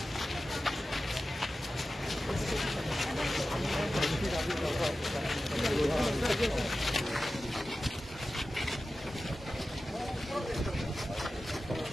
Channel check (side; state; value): both; normal; correlation 0.94